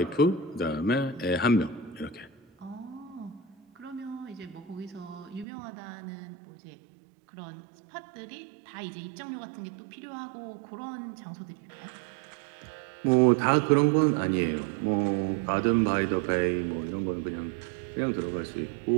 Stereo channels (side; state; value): left; drops out; at 5.5 s